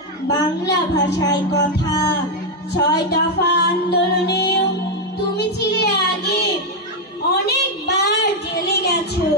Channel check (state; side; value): normal; both; correlation 0.03